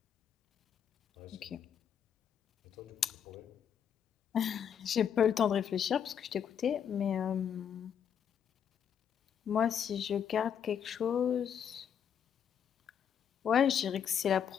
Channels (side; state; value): right; quieter; 8.3 dB